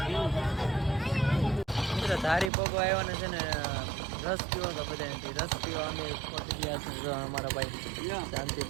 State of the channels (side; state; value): left; drops out; at 2.5 s